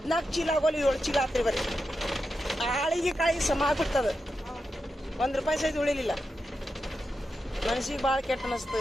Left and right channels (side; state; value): both; normal; correlation 0.88